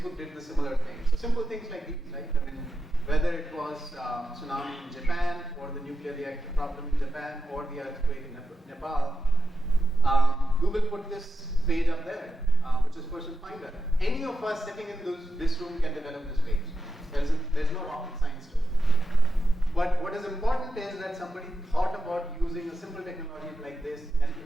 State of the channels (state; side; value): normal; both; correlation 0.90